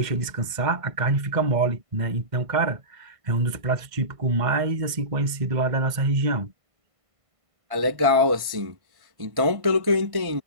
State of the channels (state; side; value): late; left; 1.5 ms